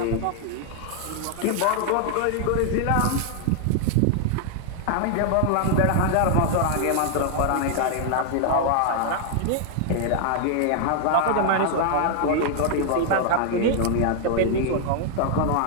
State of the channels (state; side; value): different; both; correlation 0.00